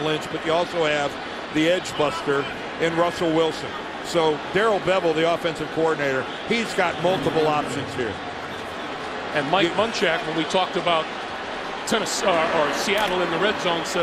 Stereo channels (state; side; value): identical; both; correlation 1.00